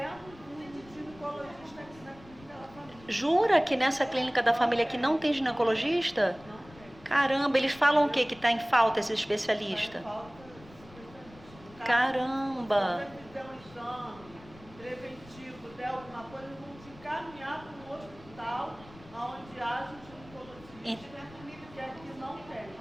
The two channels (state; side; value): noise; left; rumble, 21 dB below the sound